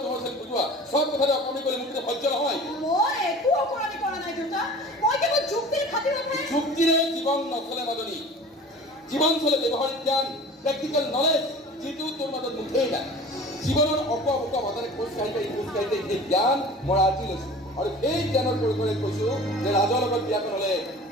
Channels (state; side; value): normal; both; correlation 0.41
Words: তোমাৰ চেল বুজোৱা চব কথাতে অকণি কৰি মোক সহ্য নহয় মই একো অকৰণি কৰা নাই দেউতা মই কেৱল যুক্তিৰ খাতিৰতহে যুক্তিৰে জীৱন নচলে মাজনী জীৱন চলে ব্যৱহাৰিক জ্ঞান প্ৰেক্টিকেল নলেজ যিটো তোৰ মাজত মুঠেই নাই জীৱনৰ অপা মাজেৰে খোজ কাঢ়িতে সেই জ্ঞান মই আজি লৈছোঁ আৰু সেই জ্ঞানৰ পৰিসৰে কৈছোঁ যে ৰাজৰ লগত বিয়াখন হ'লে